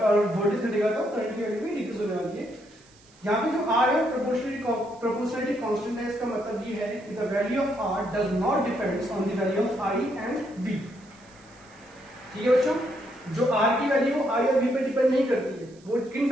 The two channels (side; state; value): right; noise; hiss, 28 dB below the sound